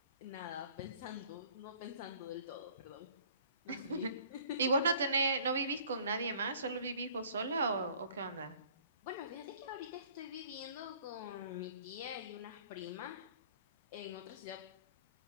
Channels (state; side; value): inverted; both; correlation -0.54